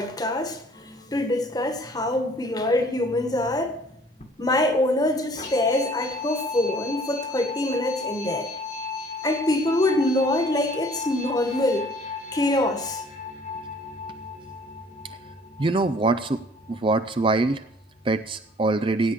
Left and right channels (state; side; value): normal; both; correlation 0.54